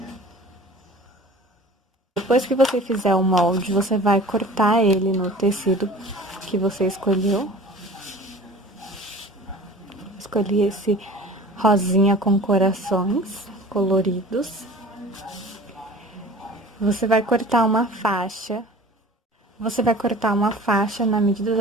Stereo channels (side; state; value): both; normal; correlation 0.42